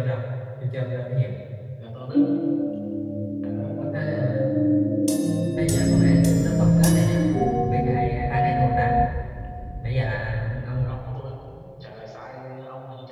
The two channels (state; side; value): identical; both; correlation 1.00